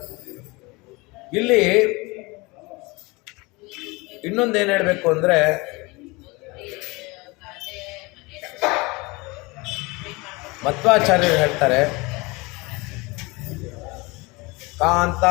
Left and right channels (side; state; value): right; quieter; 24.8 dB